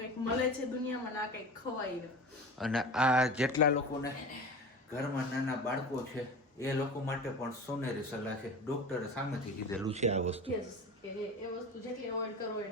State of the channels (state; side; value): normal; both; correlation 0.33